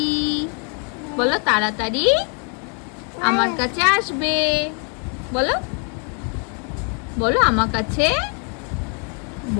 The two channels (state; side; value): quieter; right; 39.5 dB